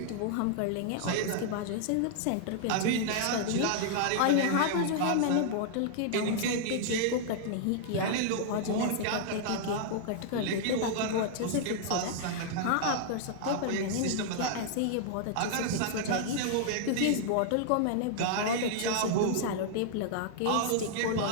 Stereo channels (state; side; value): different; both; correlation -0.01